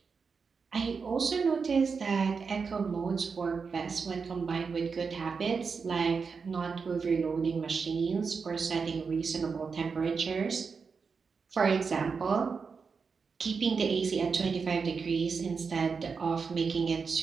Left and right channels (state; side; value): quieter; left; 5.3 dB